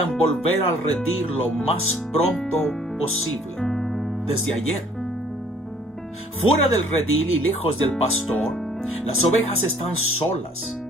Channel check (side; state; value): both; normal; correlation 0.58